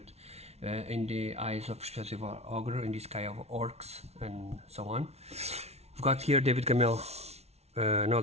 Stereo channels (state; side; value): late; left; 0.31 ms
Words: in the eyes of Expressive Ogre, in the sky of orcs and so on. We've got here David Gamel,